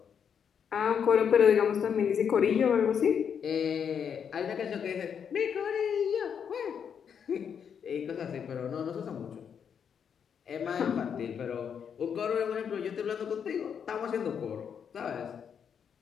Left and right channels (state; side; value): quieter; right; 7.5 dB